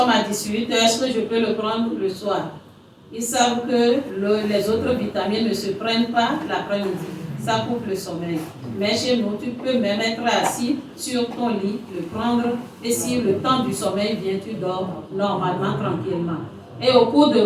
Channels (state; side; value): identical; both; correlation 1.00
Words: à 18h. Est-ce que je peux le prendre le soir? Ils savent que les autres vitamines ne se prennent pas l'après-midi. Ça coupe le sommeil. Mais chez nous, tu peux même être assis sur ton lit, le prendre, et si le temps du sommeil vient, tu dors normalement, tranquillement. Et au cours de